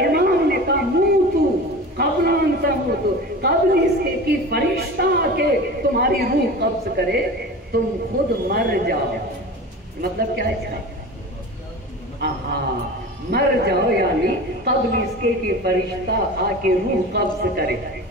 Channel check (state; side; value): normal; both; correlation 0.34